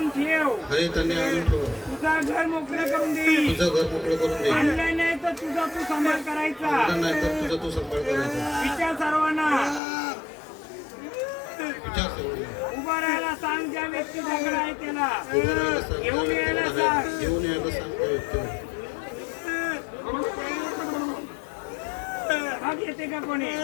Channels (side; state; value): right; drops out; at 9.8 s